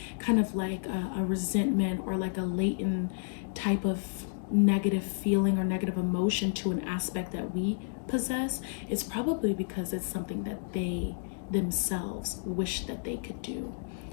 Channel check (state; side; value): silent; right; digital silence